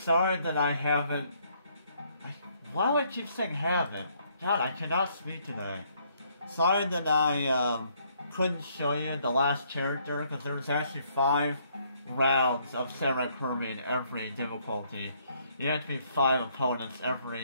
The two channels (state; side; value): inverted; both; correlation -0.68